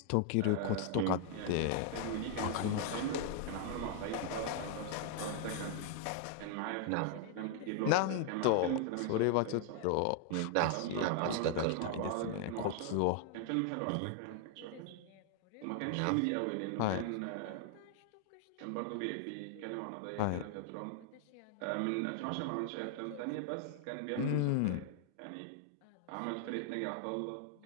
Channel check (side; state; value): both; different; correlation 0.00